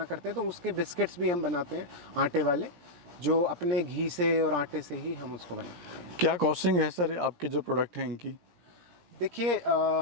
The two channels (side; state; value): left; late; 17 ms